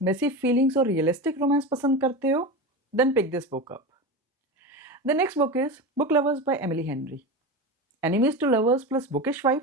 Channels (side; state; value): both; normal; correlation 0.24